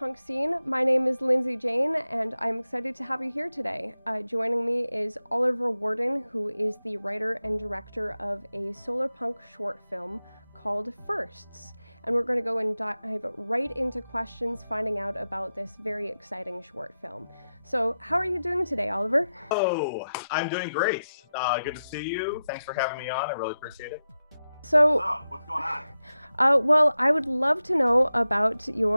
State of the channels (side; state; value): both; inverted; correlation -0.91